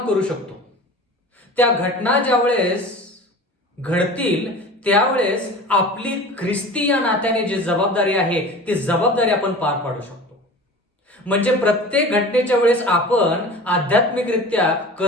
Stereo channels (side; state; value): both; normal; correlation 0.38